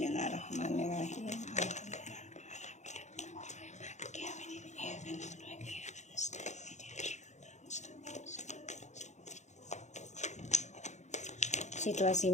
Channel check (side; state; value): right; late; 0.34 ms